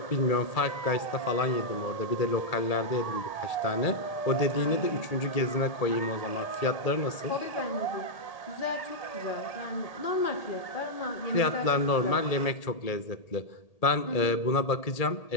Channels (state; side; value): late; right; 1.8 ms